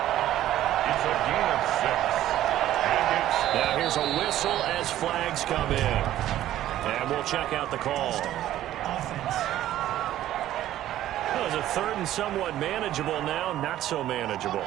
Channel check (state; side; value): quieter; left; 13.1 dB